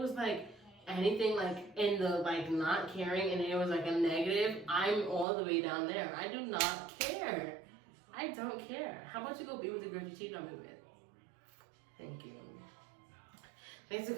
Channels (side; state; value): left; drops out; at 5.2 s